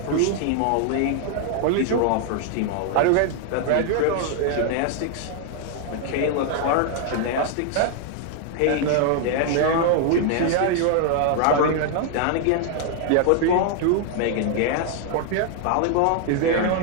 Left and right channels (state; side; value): different; both; correlation 0.00